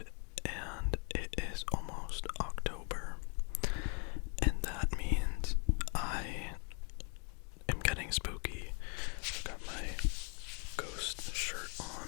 and it is almost October, and that means I am getting spooky. I've got my ghost shirt on,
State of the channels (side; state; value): right; quieter; 37.8 dB